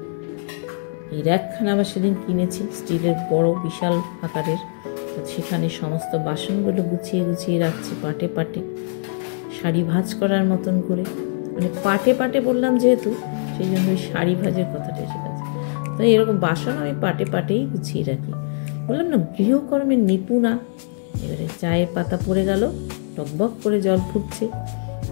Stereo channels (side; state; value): right; silent; digital silence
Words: এই র্যাকখানা আবার সেদিন কিনেছি, স্টিলের বড় বিশাল আকারের। তো সেখানে সমস্ত বাসনগুলো গুছিয়ে গুছিয়ে রাখছি পাটে পাটে, শাড়ি ভাঁজ করার মতন করে। মানে পাটে পাটে বললাম যেহেতু, সেই জন্য ওই শাড়ি ভাজের কথাটা এসে গেছে। তো এরকম বাসন আমি পাটে পাটেই গুছিয়ে রাখি। বললাম না গৃহকর্মের নিপুণা। এবারে চায়ের পাতা পড়ে গেল, টকবক করে জল ফুটছে,